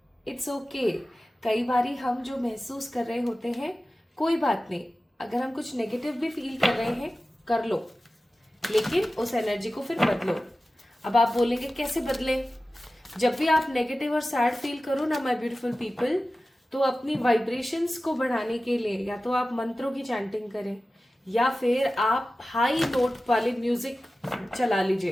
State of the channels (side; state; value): both; normal; correlation 0.95